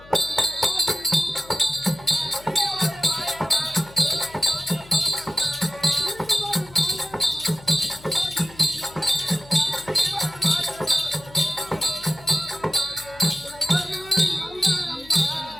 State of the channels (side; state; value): left; noise; hum, 22 dB below the sound